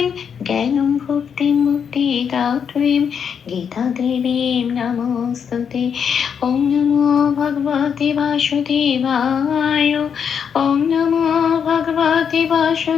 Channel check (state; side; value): quieter; right; 7.3 dB